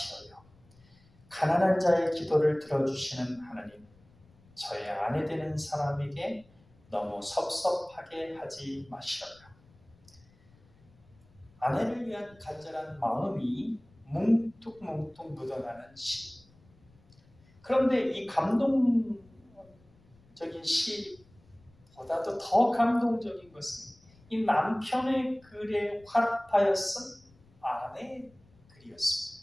가난한 자의 기도를 들어주시는 하나님, 저의 아내 되는 사람에게 너무 섭섭하게 하지 마시어요. 아내를 위한 간절한 마음이 뭉툭뭉툭 묻어나는 시. 그런데 이 감동적인 시보다도 더 감동적인 것은 이 남편의 글에 화답하였은 아내의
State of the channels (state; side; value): noise; left; rumble, 29 dB below the sound